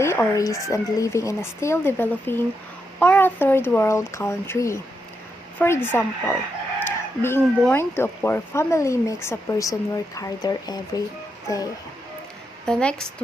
or risk and living in a still developing or a third world country. For example, being born to a poor family makes a person work harder every day. The next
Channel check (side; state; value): both; normal; correlation 0.83